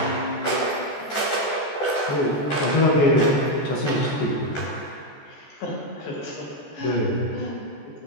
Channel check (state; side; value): late; right; 14 ms